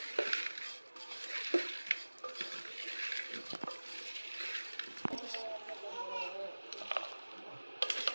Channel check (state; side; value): inverted; both; correlation -1.00